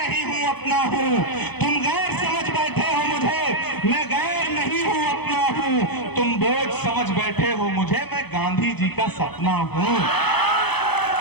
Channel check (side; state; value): right; late; 0.98 ms